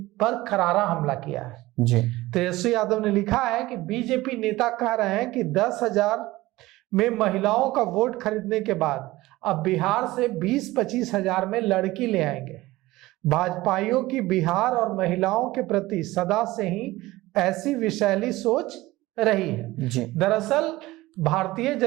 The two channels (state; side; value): quieter; left; 18.5 dB